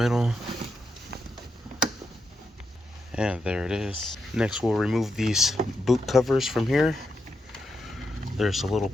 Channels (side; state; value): both; normal; correlation 0.84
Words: And there it is. Next we'll remove these boot covers from here. There's a little